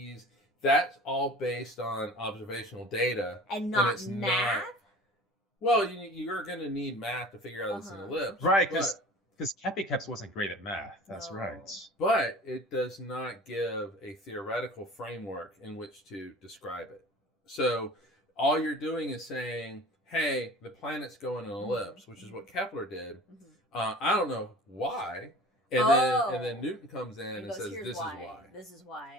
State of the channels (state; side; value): normal; both; correlation 0.42